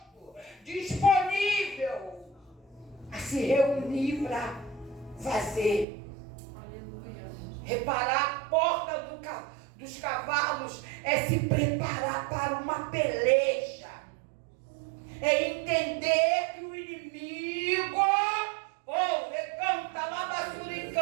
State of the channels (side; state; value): left; drops out; at 5.9 s